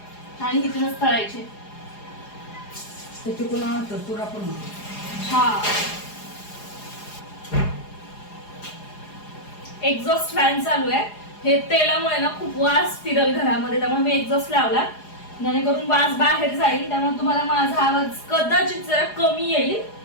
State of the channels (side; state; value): right; late; 4.8 ms